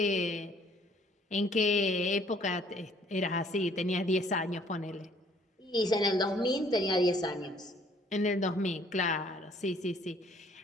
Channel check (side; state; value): both; normal; correlation 0.60